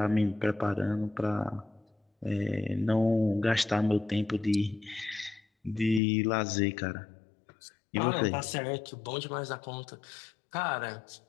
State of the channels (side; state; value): right; drops out; at 6.0 s